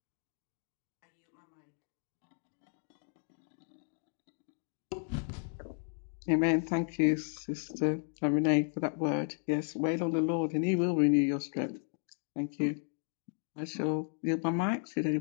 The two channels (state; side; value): silent; right; 55 dB below the other